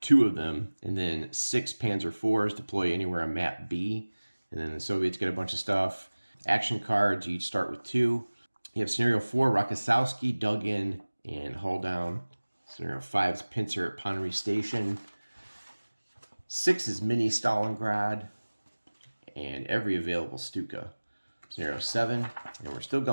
2 of them, and then 6 Panzer IVs deploy anywhere on map B. And then the Soviets get a bunch of stuff. Action cards, you each start with 2. You have Scenario 4, Rokossowski, dug in and hull down. Scenario 5 is Pincer at Ponnery Station. 6 is Mini Stalingrad, and every available Stuka. Scenario 7, and we're still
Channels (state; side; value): inverted; both; correlation -1.00